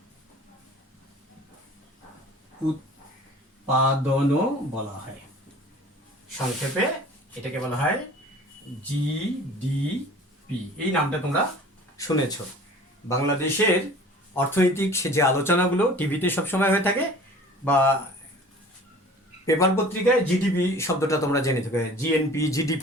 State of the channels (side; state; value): both; normal; correlation 0.45